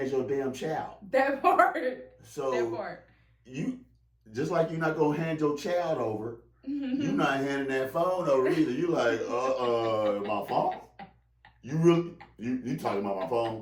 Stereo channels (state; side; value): identical; both; correlation 1.00